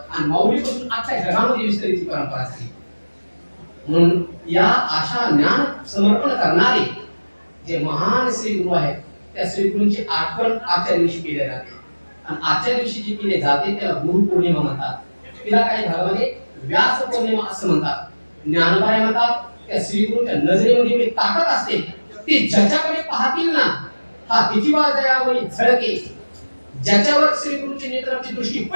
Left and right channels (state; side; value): inverted; both; correlation -1.00